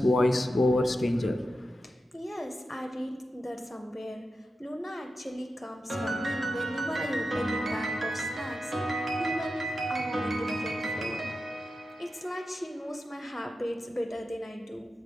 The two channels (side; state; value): both; normal; correlation 0.90